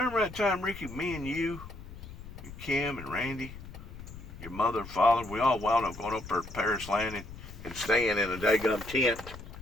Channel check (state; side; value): noise; left; rumble, 13 dB below the sound